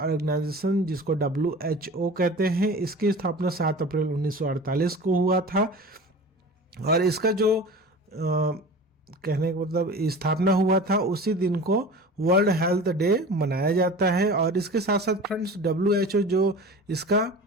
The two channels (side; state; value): both; normal; correlation 0.37